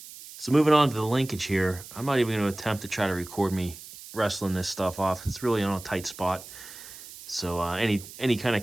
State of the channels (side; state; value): right; noise; hiss, 15 dB below the sound